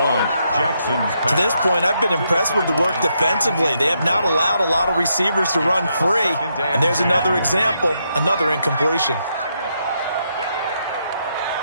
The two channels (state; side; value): inverted; both; correlation -0.79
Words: To this point, I've been impressed with the work defensively. They have not allowed a lot of receivers to run free, and there's another example, another incompletion.